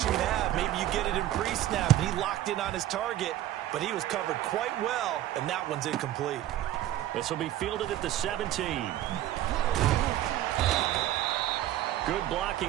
you have. Maybe you get it in pre-snap, and he locked in on his target, but he was covered quite well, and that one's incomplete. This will be fielded at the 17. Good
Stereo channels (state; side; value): quieter; left; 13.3 dB